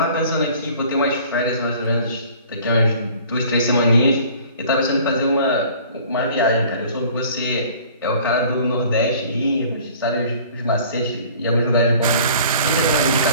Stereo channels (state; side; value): inverted; both; correlation -0.50